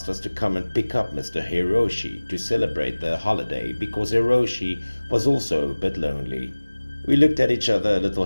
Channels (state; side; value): inverted; both; correlation -1.00